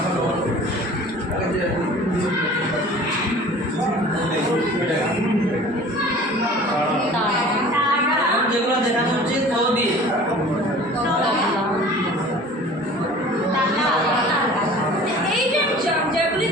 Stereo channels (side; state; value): both; normal; correlation 0.45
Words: যেগুলো দেখানো হচ্ছে তো দিয়ে এই যে যেগুলি